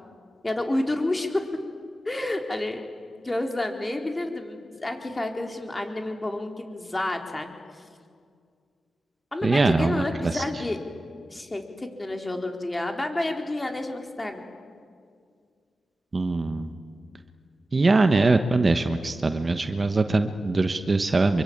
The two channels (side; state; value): both; normal; correlation 0.94